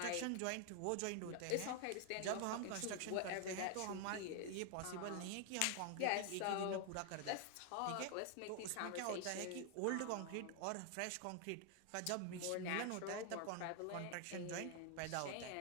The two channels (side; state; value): both; different; correlation 0.00